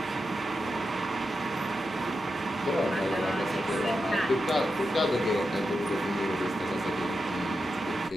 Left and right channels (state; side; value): normal; both; correlation 0.88